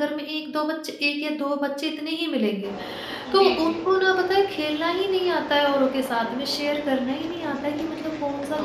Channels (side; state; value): both; identical; correlation 1.00